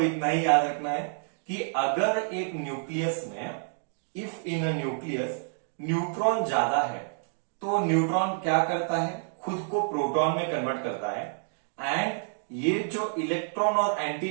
ही याद रखना है कि अगर एक न्यूक्लियस में, if in a nucleus neutron ज्यादा है तो न्यूट्रॉन क्या करता है, खुद को प्रोटॉन में कन्वर्ट करता है, एंड ये जो इलेक्ट्रॉन और एंटी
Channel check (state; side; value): silent; left; digital silence